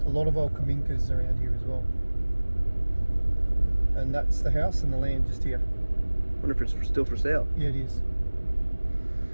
A lot of old kaminkas around here as well. And that's the house and the land just here. I wonder if it's still for sale. Yeah, it is.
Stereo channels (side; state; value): both; inverted; correlation -1.00